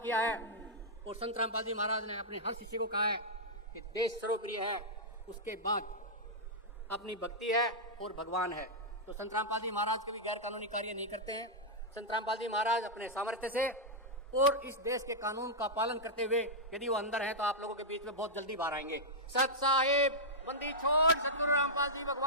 है और संत रामपाल जी महाराज ने अपने हर शिष्य को कहा है कि देश सर्वप्रिय है, उसके बाद अपनी भक्ति है और भगवान है। तो संत रामपाल जी महाराज कभी गैर कानूनी कार्य नहीं करते हैं। संत रामपाल जी महाराज अपने सामर्थ्य से और इस देश के कानून का पालन करते हुए यदि वो अंदर हैं तो आप लोगों के बीच में बहुत जल्दी बाहर आएंगे। सत साहिब बंदी छोड़ सतगुरु रामपाल जी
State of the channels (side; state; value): both; normal; correlation -0.09